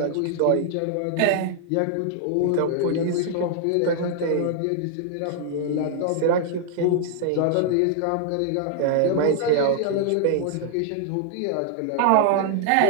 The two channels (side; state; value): both; different; correlation 0.00